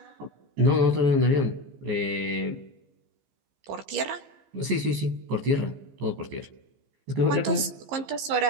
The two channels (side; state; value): left; late; 15 ms